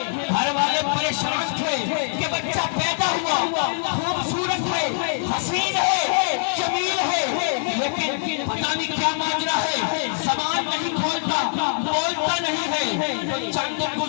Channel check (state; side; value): silent; right; digital silence